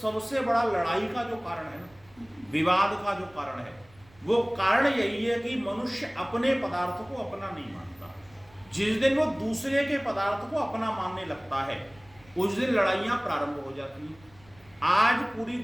बड़ा लड़ाई का जो कारण है ना, विवाद का जो कारण है, वो कारण यही है कि मनुष्य अपने पदार्थ को अपना नहीं मानता। जिस दिन वो दूसरे के पदार्थ को अपना मानने लगता है, उस दिन लड़ाइयां प्रारंभ हो जाती हैं। आज पूरी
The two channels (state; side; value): noise; right; rumble, 27 dB below the sound